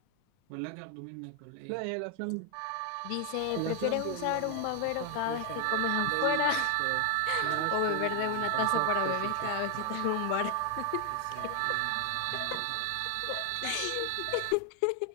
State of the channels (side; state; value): both; different; correlation 0.00